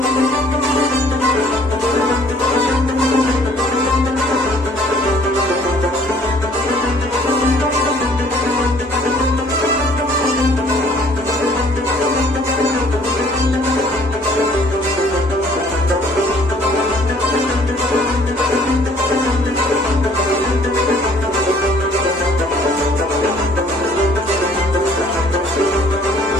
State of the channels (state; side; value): normal; both; correlation 0.58